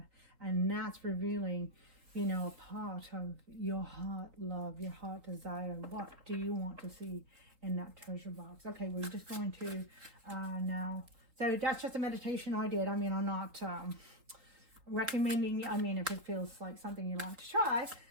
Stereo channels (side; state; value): left; late; 3.8 ms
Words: And that's revealing, you know, a part of your heart love, your heart desire. What do you want to see in that treasure box? Okay, we're just going to now. So that's just a meditation I did. I mean, I'm not recommending, I mean, if it feels like something you like to try.